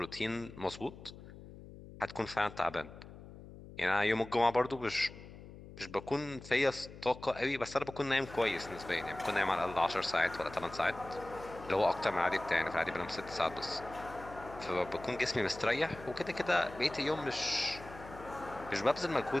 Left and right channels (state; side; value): noise; left; hum, 16 dB below the sound